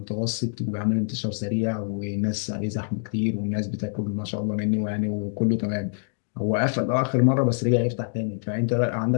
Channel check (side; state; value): right; silent; digital silence